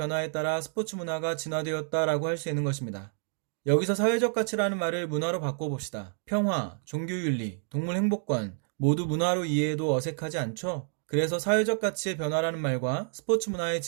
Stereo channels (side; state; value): left; silent; 59 dB below the other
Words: 따라 스포츠 문화가 진화되었다라고 할 수 있는 것입니다. 여기서 사회적 가치라는 말을 문화로 바꿔봅시다. 평화, 종교윤리, 동물 행복관 모두 문화로 이해해도 어색하지 않죠? 그래서 사회적 가치의 변화라는 말과 스포츠 문화의